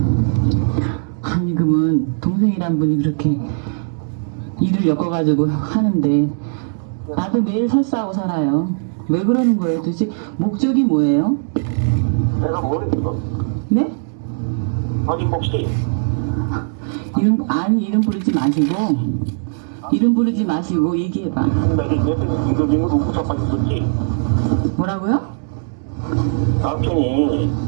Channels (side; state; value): left; silent; digital silence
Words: 아니 그러면 동생이란 분이 그렇게 일을 엮어가지고 하는데 나도 매일 설사하고 살아요. 왜 그러는 거예요? 도대체 목적이 뭐예요? 내가 모르겠어. 네? 아니 혹시 이름 부르지 마시고 얘기해봐. 내가 옆에 김도진을 웃고 자빠졌었지? 뭐라고요? 남편이